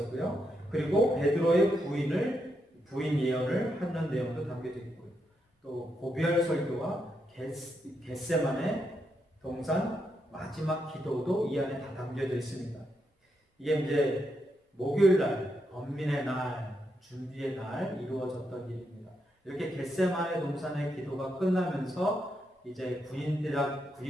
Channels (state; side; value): normal; both; correlation 0.82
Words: 그리고 베드로의 부인 예언을 하는 내용도 담겨져 있고요. 또 고별 설교와 겟세마네 동산 마지막 기도도 이 안에 다 담겨져 있습니다. 이게 이제 목요일 날, 번민의 날, 준비의 날 이루어졌던 일입니다. 이렇게 겟세마네 동산의 기도가 끝나면서 이제